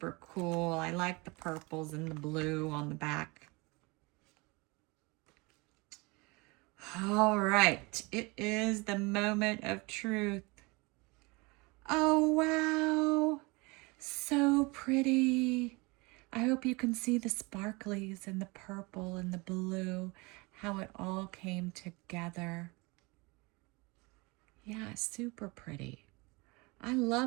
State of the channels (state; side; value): quieter; left; 26.4 dB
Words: cool. I like the purples and the blue on the back. All right, it is the moment of truth. Oh, wow, so pretty. I hope you can see the sparklies and the purple and the blue, how it all came together. Yeah, super pretty. I